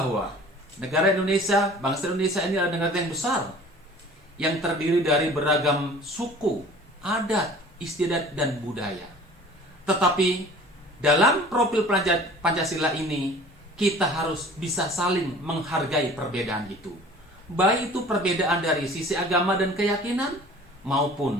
negara Indonesia, bangsa Indonesia ini adalah negara yang besar yang terdiri dari beragam suku, adat, istiadat, dan budaya. Tetapi dalam profil Pancasila ini, kita harus bisa saling menghargai perbedaan itu. Baik itu perbedaan dari sisi agama dan keyakinan,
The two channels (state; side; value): normal; both; correlation 0.46